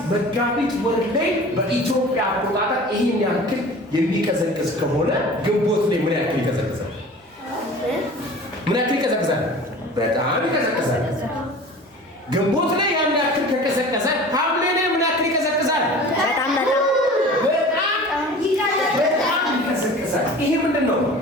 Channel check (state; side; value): normal; both; correlation 0.41